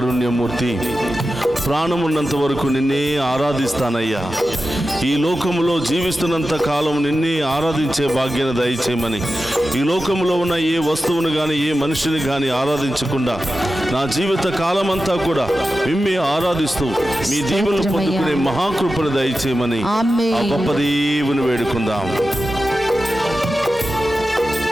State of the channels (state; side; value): normal; both; correlation 0.93